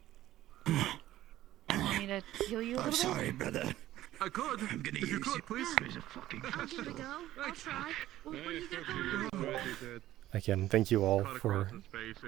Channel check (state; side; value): quieter; left; 14.3 dB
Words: you want me to heal you a I'm little sorry, brother. I could. I'm gonna If you use could, you please. as a fucking bit? Give it a go. I'll try. What do you got going? Again, thank you all for